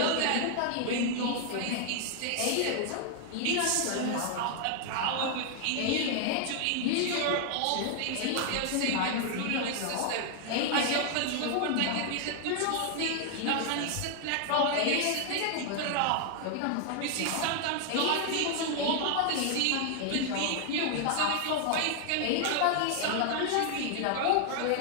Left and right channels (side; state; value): both; different; correlation 0.00